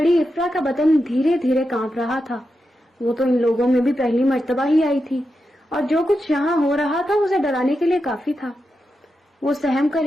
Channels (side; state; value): both; normal; correlation 0.88